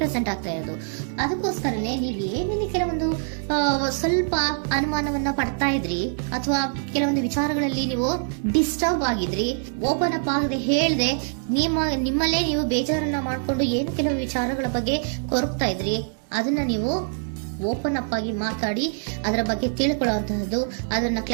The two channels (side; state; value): left; silent; digital silence